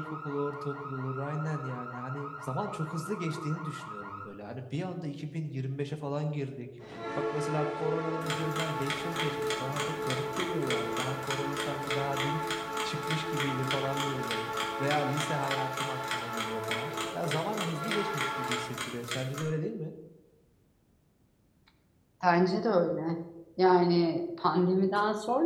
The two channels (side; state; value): both; identical; correlation 1.00